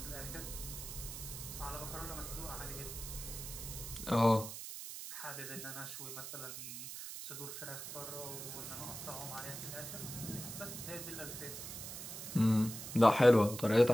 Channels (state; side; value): noise; right; hiss, 8 dB below the sound